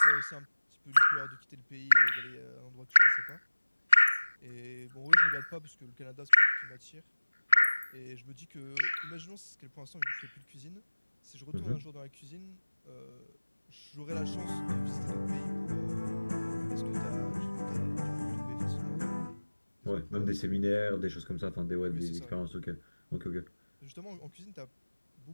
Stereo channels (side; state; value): both; inverted; correlation -1.00